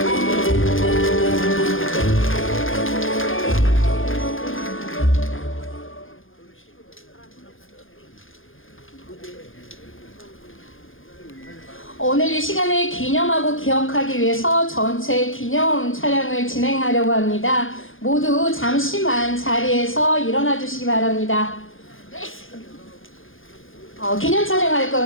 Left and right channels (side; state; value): right; late; 0.59 ms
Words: 오늘 이 시간을 기념하고 기억하기 위해서 전체 기념 촬영을 진행하려고 합니다. 모두 잠시만 자리에서 일어나 주시기 바랍니다. 기념 촬영할